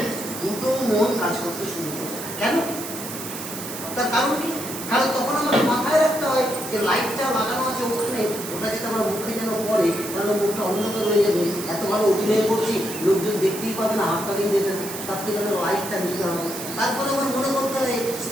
দুটো মন কাজ করতে শুরু করে। কেন? তার কারণ কি? কারণ তখন আমাদের মাথায় রাখতে হয় যে লাইটটা লাগানো আছে ওখানে, ওটা যদি আমার মুখে যেন পড়ে তাহলে মুখটা অন্ধকার হয়ে যাবে। এত ভালো অভিনয় করছি, লোকজন দেখতেই পাবে না, হাত তালিয়ে দেবে না, তার থেকে আমার লাইটটা নিতে হবে। তারপরে আমার মনে করতে হয়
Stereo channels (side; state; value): right; noise; hiss, 9 dB below the sound